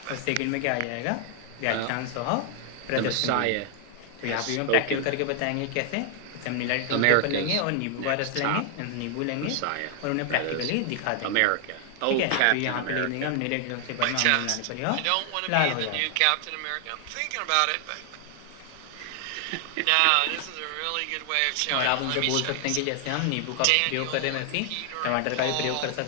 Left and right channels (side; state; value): both; different; correlation 0.00